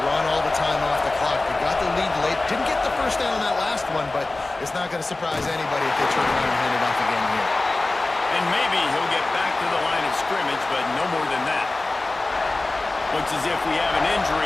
run all the time off the clock. They got the lead late. Didn't get the first down on that last one, but it's not going to surprise anybody if they turn around and hand it off again here. And maybe he'll get back to the line of scrimmage, but no more than that. Looks as if we have an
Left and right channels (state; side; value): quieter; right; 3.1 dB